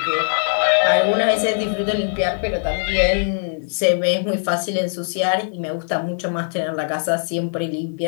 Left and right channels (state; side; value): silent; right; digital silence